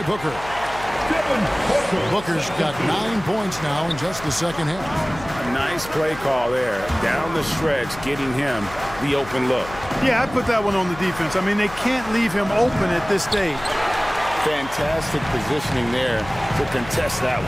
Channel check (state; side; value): noise; left; hum, 15 dB below the sound